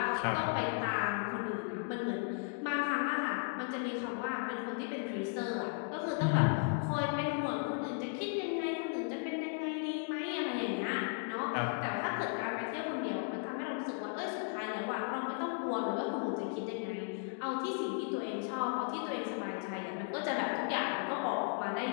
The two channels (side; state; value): right; silent; 54 dB below the other